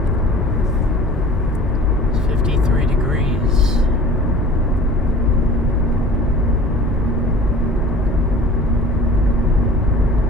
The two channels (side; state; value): both; normal; correlation 0.43